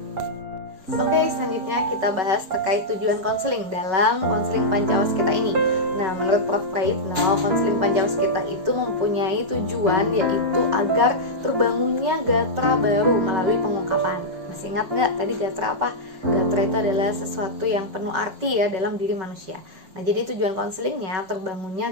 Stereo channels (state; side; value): late; left; 5.4 ms